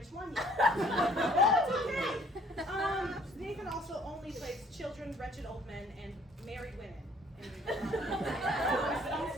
one yet. That's okay. Nathan also only plays children, wretched old men, and married women.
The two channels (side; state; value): both; normal; correlation 0.58